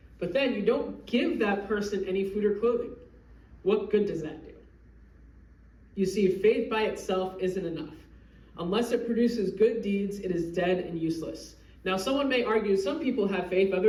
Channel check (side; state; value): both; identical; correlation 1.00